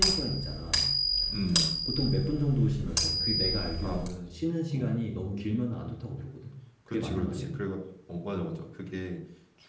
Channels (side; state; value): both; identical; correlation 1.00